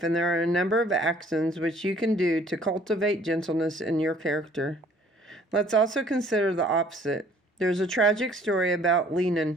and there are a number of actions which you can do to cultivate gentleness in your character. Let's also consider the opposite. There's a tragic story about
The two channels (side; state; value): both; normal; correlation 0.57